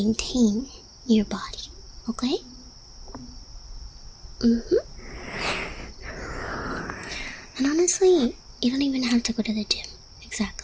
your body, okay? And honestly, you don't even have to go to the gym,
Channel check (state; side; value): identical; both; correlation 1.00